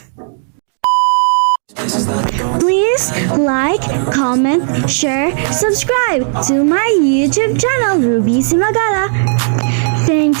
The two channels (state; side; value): silent; left; 68 dB below the other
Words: Please like, comment, share, subscribe to my YouTube channel, Ruby Simagala. Thank